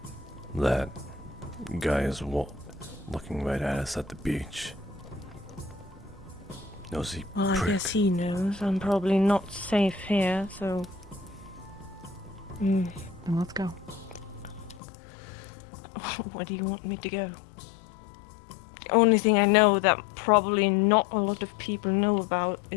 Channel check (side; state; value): right; drops out; at 14.8 s